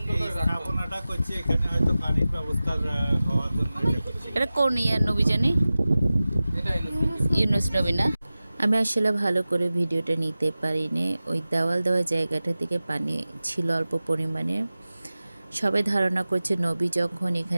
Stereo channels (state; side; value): inverted; both; correlation -0.96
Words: এই করে রাখতো। স্থাপনাটা করছি এখানে, হয়তো পানির ব্যবস্থা হওয়ার জন্য এটা করছি। এটা কোন ইয়ার নবী জানি? এটা ইউনুস। ইউনুস নবী না? আমি আসলে ভালো করে ভিডিওটা নিতে পারিনি। ওই দেওয়াল দেওয়া জায়গাটা থেকে পানি ছিল অল্প পরিমাণে। সবাই ধারণা করছে নবী যখন